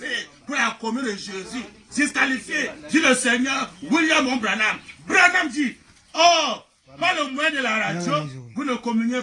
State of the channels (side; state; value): both; identical; correlation 1.00